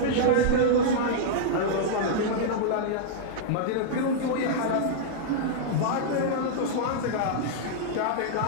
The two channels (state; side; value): different; both; correlation -0.02